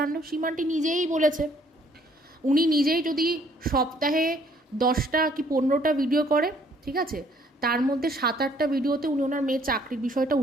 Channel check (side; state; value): both; normal; correlation 0.62